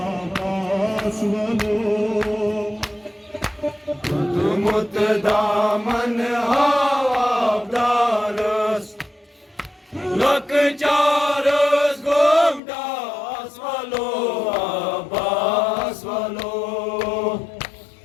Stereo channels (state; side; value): drops out; right; at 12.6 s